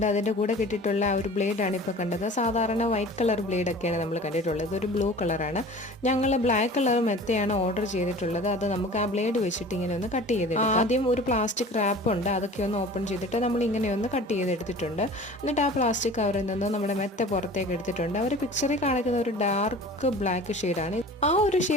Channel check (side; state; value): both; normal; correlation 0.42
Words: അതിൻ്റെ കൂടെ കിട്ടിയിട്ടുള്ള ആ ഒരു ബ്ലേഡാണ് ഇപ്പോൾ കണ്ടത്. സാധാരണ വൈറ്റ് കളർ ബ്ലേഡൊക്കെയാണ് നമ്മൾ കണ്ടിട്ടുള്ളത്. ഇതൊരു ബ്ലൂ കളറാണ്. ഞങ്ങൾ ബ്ലാക്ക് കളർ മെത്തയാണ് ഓർഡർ ചെയ്തിട്ടുള്ളത്. അത് നമുക്ക് ആ ബ്ലേഡ് വെച്ചിട്ട് ഇങ്ങനെ ഒന്ന് കട്ട് ചെയ്തെടുക്കാം. ആദ്യം ഒരു പ്ലാസ്റ്റിക് റാപ്പ് ഉണ്ട്, അതൊക്കെ ഒന്ന് ഓപ്പൺ ചെയ്തിട്ട് നമ്മൾ ഇങ്ങനെ ഒന്ന് കട്ട് ചെയ്തെടുത്തിട്ടുണ്ട്. എന്നിട്ട് ആ പ്ലാസ്റ്റിക് കവറിൽ നിന്ന് നമ്മുടെ മെത്ത പുറത്തേക്ക് എടുത്തിട്ടുണ്ട്. അവർ പിക്ചറിൽ കാണിക്കുന്ന ഒരു ഡാർക്ക് ബ്ലാക്ക് ഷെയ്ഡാണ്. ആ ഒരു